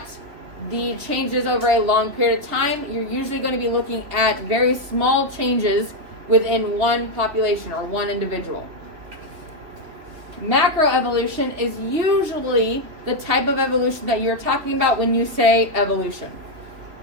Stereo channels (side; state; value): left; late; 3.3 ms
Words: the changes over a long period of time. You're usually going to be looking at very small changes within one population or one individual. Macroevolution is usually the type of evolution that you're talking about when you say evolution.